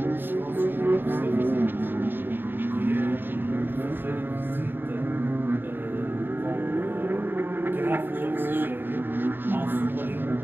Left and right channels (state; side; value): late; left; 0.096 ms